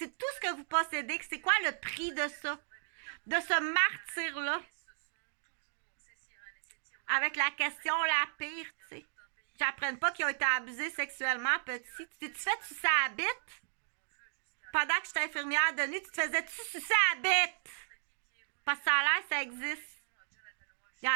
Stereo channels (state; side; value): silent; left; digital silence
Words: tout ce que vous possédez. C'est quoi le prix de ça? De ce martyr-là? Avec la question la pire, tu sais. J'apprenne pas qu'ils ont été abusés sexuellement petit. Tu fais sucer à la bite? Pendant que j'étais infirmière de nuit, tu te faisais-tu sucer à la bite? Parce que ça a l'air, ça existe. Ils